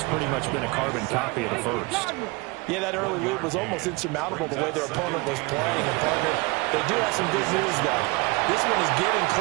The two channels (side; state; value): left; quieter; 25.9 dB